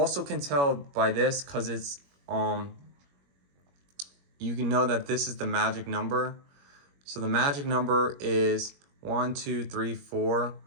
can tell by this, because it's you can know that this is the magic number. So the magic number is 1, 2, 3, 4.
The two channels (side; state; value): left; late; 21 ms